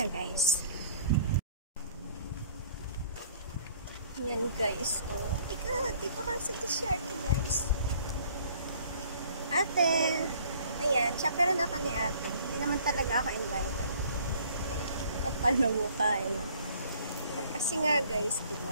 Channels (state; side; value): inverted; both; correlation -0.55